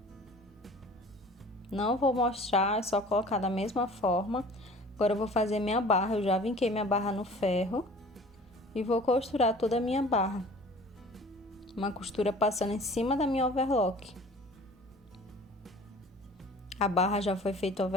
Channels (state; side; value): normal; both; correlation 0.46